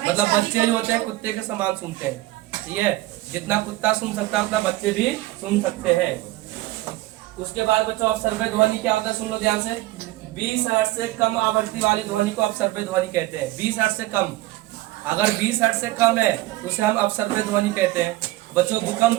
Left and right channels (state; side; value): quieter; left; 17.9 dB